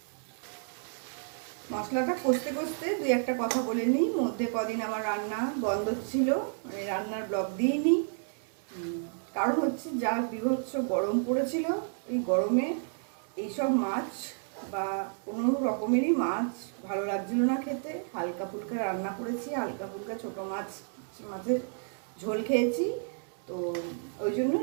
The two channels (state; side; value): silent; left; 57 dB below the other